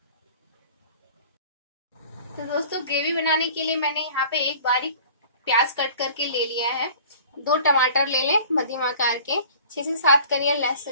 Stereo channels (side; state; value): both; inverted; correlation -0.46